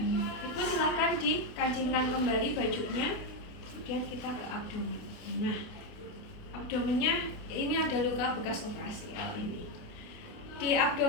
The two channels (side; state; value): right; late; 28 ms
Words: Ibu silahkan dikancingkan kembali bajunya. Kemudian kita ke abdomen. Nah, abdomennya ini ada luka bekas operasi ini. Di